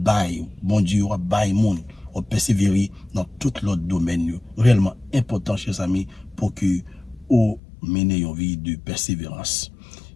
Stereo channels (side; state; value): right; drops out; at 7.6 s